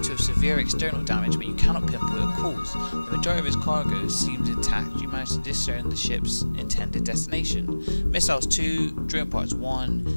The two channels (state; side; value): inverted; both; correlation -1.00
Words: have severe external damage, but you cannot pinpoint a cause. The majority of its cargo seems intact. You manage to discern the ship's intended destination. Missiles 2, drone parts